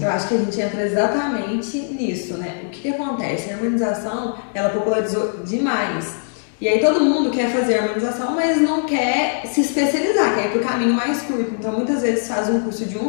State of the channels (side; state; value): right; silent; 65 dB below the other